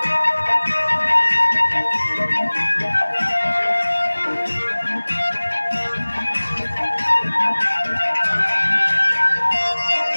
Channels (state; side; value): inverted; both; correlation -1.00